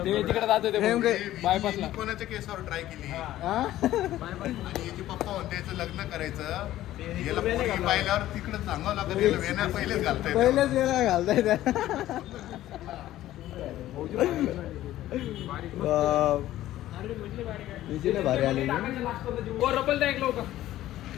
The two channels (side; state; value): right; quieter; 14.2 dB